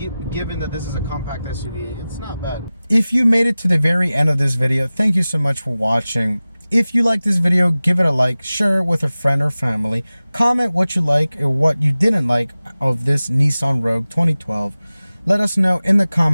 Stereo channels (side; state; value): both; inverted; correlation -0.97